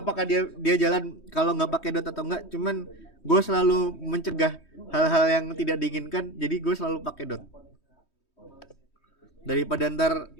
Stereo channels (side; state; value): right; late; 3.2 ms